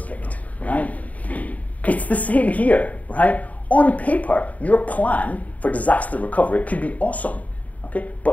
kicked, right? It's the same here, right? On paper, your plan for disaster recovery could be awesome, okay?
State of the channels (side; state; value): right; late; 0.072 ms